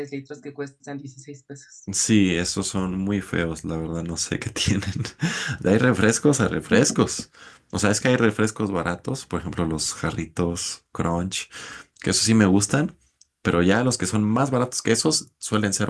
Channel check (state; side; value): identical; both; correlation 1.00